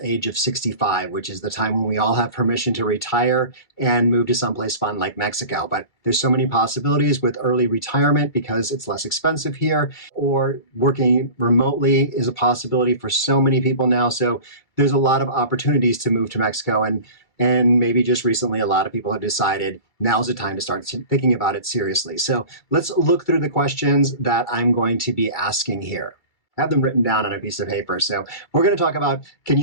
age of 65, which is the time when we all have permission to retire and move to someplace fun like Mexico. But there's so many possibilities with early retirement because it's less expensive here, or working remotely is a possibility for so many people now. So there's a lot of opportunities to move to Mexico, and maybe just recently, a lot of people have decided now's the time to start thinking about it seriously. So let's look through the questions that I'm going to be asking here. I have them written down on a piece of paper. So we're going to talk about, can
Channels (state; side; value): late; right; 2.3 ms